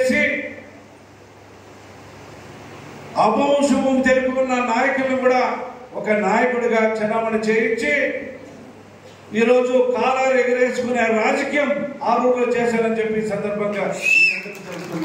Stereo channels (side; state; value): both; identical; correlation 1.00